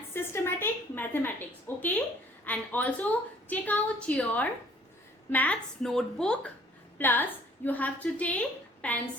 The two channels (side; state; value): both; normal; correlation 0.57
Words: Systematic Mathematics, okay? And also take out your maths notebook, plus you have to take